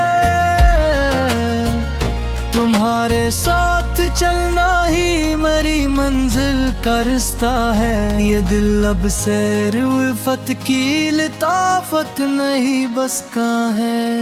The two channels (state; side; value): identical; both; correlation 1.00